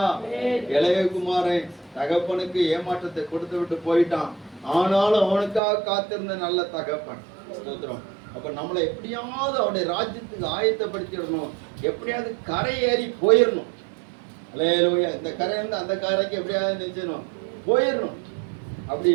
இளைய குமாரன் தகப்பனுக்கு ஏமாற்றத்தை கொடுத்து விட்டு போயிட்டான். ஆனாலும் அவனுக்காக காத்திருந்த நல்ல தகப்பன். ஸ்தோத்திரம். அப்ப நம்மளை எப்படியாவது அவனுடைய ராஜ்யத்துக்கு ஆயத்தப்படுத்திடணும். எப்படியாவது கரை ஏறி போயிடணும். அல்லேலூயா. இந்த கரை இருந்து அந்த கரைக்கு எப்படியாவது நினைச்சணும் போயிடணும். அப்படி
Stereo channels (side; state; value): left; drops out; at 5.6 s